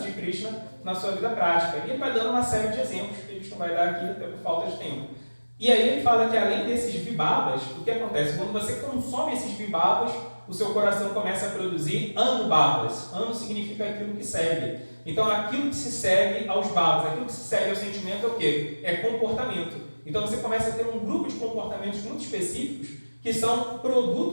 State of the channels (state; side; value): inverted; both; correlation -1.00